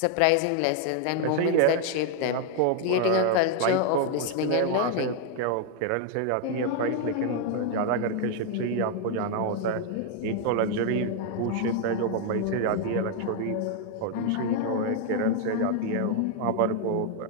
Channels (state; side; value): different; both; correlation 0.00